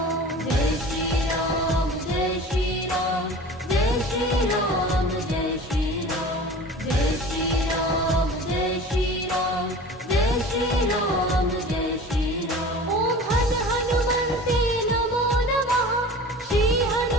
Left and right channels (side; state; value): both; normal; correlation 0.39